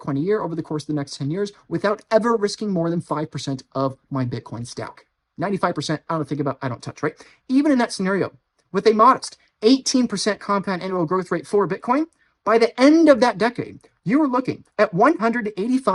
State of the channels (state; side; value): identical; both; correlation 1.00